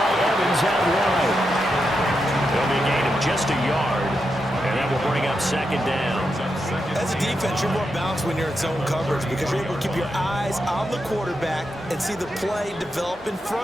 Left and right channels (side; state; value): both; normal; correlation 0.85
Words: Evans out wide. There'll be a gain of just a yard, and that will bring up 2nd down. As a defense, you're more balanced when you're in zone coverage because you're able to keep your eyes on the quarterback and see the play develop in